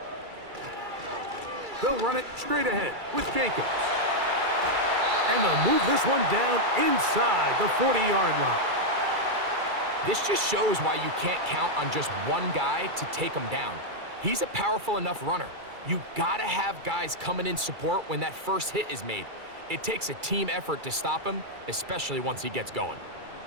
They'll run it straight ahead with Jacobs. And they'll move this one down inside the 40-yard line. This just shows why you can't count on just one guy to take him down. He's a powerful enough runner. You gotta have guys coming in support when that first hit is made. It takes a team effort to stop him, especially once he gets going.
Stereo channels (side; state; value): left; late; 2.3 ms